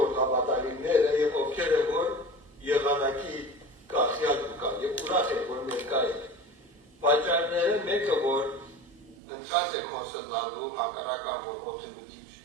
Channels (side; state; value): left; drops out; at 9.2 s